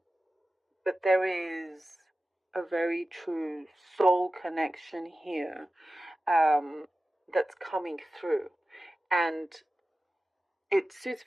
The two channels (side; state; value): both; normal; correlation 0.95